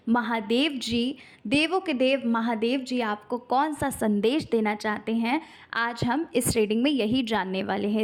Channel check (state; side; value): identical; both; correlation 1.00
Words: महादेव जी, देवों के देव महादेव जी आपको कौन सा संदेश देना चाहते हैं, आज हम इस रीडिंग में यही जानने वाले